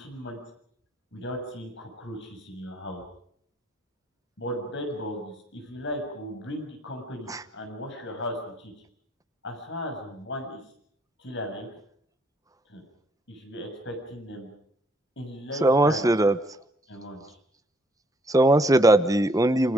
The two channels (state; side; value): normal; both; correlation 0.67